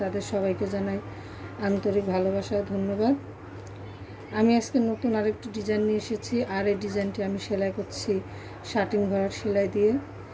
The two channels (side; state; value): both; identical; correlation 1.00